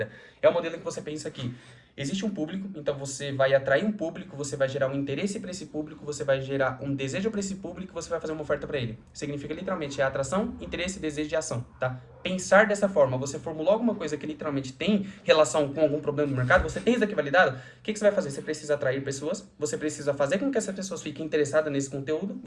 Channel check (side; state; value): both; identical; correlation 1.00